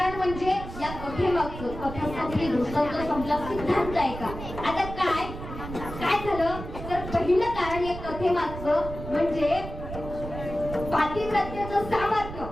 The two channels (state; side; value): noise; right; rumble, 9 dB below the sound